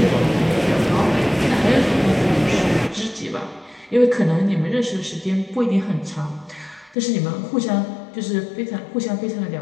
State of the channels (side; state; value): right; drops out; at 7.0 s